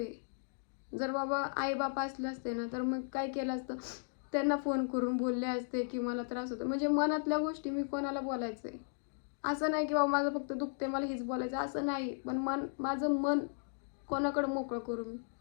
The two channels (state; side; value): silent; right; digital silence